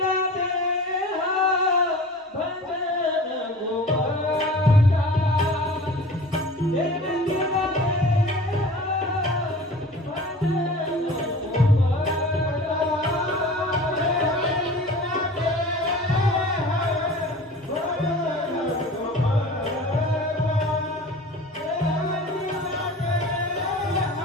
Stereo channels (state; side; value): normal; both; correlation 0.40